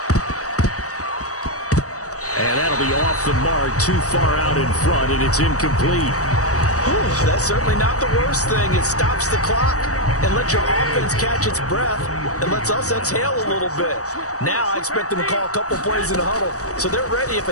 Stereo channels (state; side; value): late; right; 0.66 ms